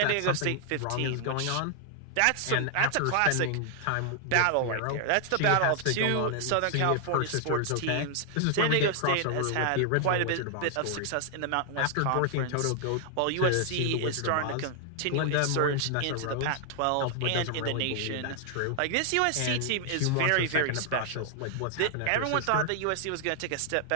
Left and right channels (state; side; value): different; both; correlation 0.00